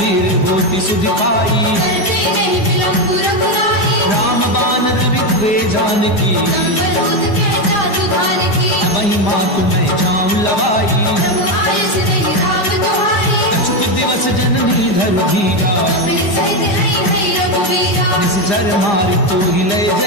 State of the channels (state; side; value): late; right; 5.0 ms